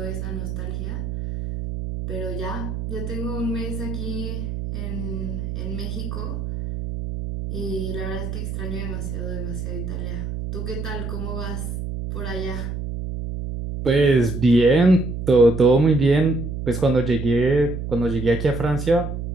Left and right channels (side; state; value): right; noise; hum, 5 dB below the sound